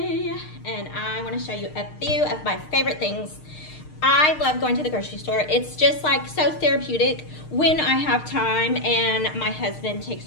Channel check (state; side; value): late; right; 6.5 ms